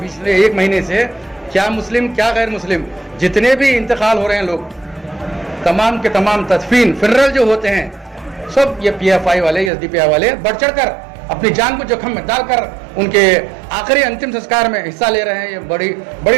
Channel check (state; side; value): drops out; left; at 9.7 s